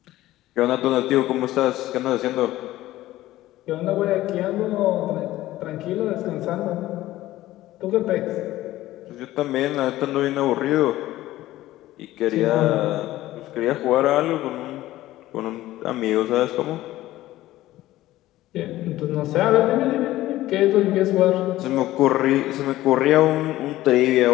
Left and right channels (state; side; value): quieter; right; 15.7 dB